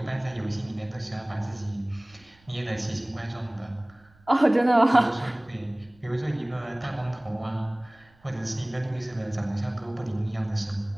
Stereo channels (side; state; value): right; noise; rumble, 29 dB below the sound